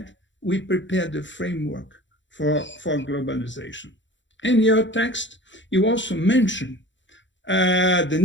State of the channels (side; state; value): right; late; 0.54 ms